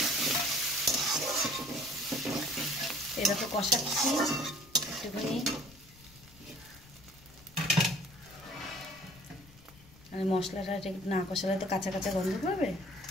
এরকম কষাচ্ছি একটুখানি। মানে মশলাটা না কষালে তো কাঁচা কাঁচা গন্ধ করবে।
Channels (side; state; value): left; noise; rumble, 24 dB below the sound